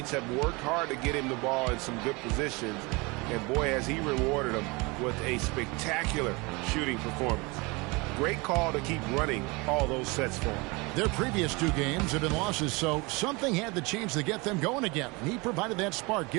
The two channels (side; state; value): left; quieter; 26.4 dB